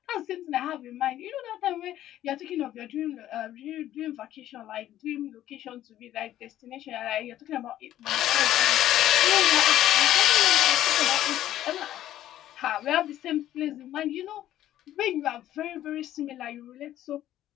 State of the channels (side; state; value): right; quieter; 12.8 dB